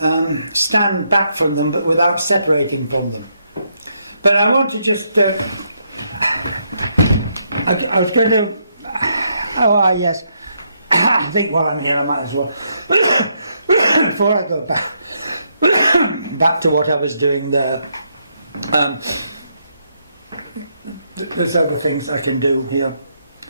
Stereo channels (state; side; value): inverted; both; correlation -0.77